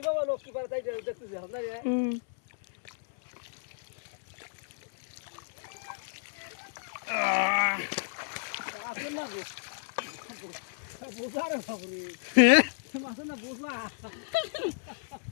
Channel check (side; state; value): right; silent; 56 dB below the other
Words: বাবা লোক কি পারে তাই দেখতেছি আমরা রে আসেন না গো বুঝা রে বাবুরে মাছ না বুঝলা